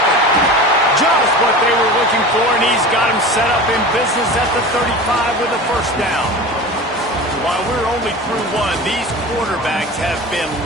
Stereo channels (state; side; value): normal; both; correlation 0.34